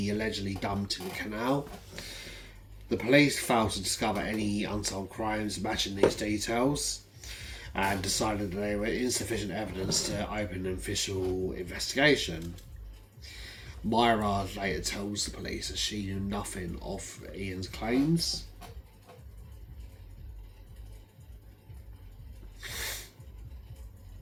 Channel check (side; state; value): both; identical; correlation 1.00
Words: allegedly dumped in the canal. The police failed to discover any unsolved crimes matching these details, and decided that there were insufficient evidence to open an official investigation. Myra later tells the police that she knew nothing of Ian's claims.